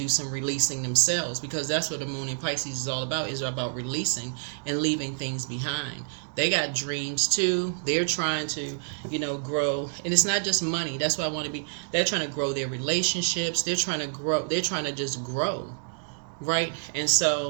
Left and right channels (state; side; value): silent; left; digital silence